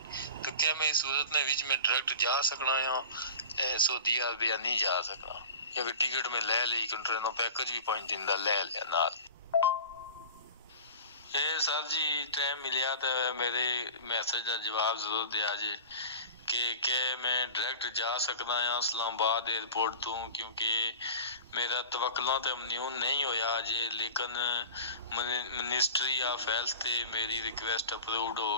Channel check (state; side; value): inverted; both; correlation -0.37